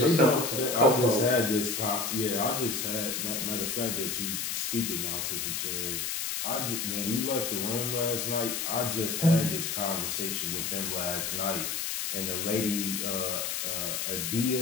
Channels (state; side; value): noise; left; hiss, 2 dB below the sound